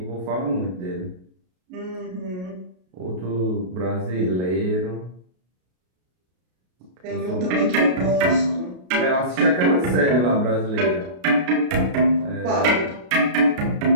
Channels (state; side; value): late; left; 33 ms